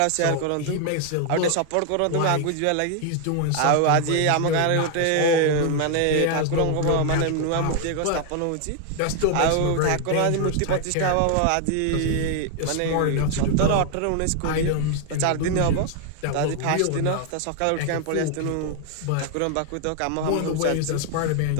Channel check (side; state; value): both; different; correlation 0.00